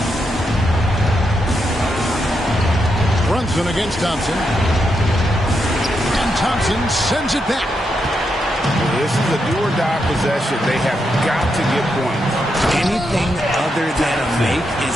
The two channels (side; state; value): both; normal; correlation 0.83